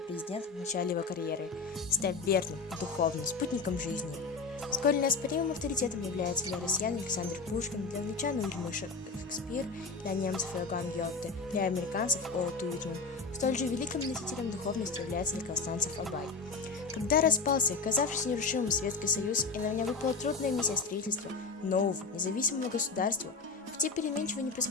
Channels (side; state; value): right; quieter; 4.4 dB